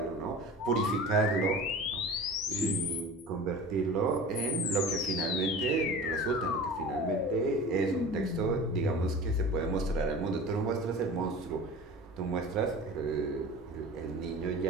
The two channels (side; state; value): both; normal; correlation 0.37